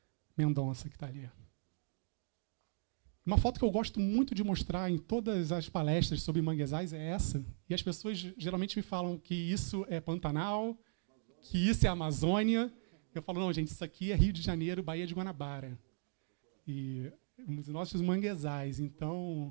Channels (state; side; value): silent; left; digital silence